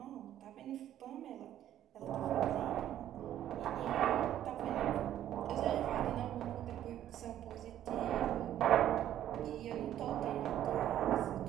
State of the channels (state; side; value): quieter; left; 11.7 dB